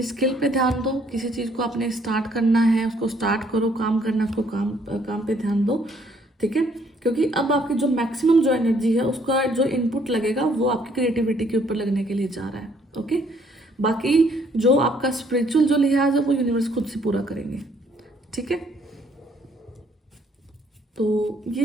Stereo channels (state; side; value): normal; both; correlation 0.65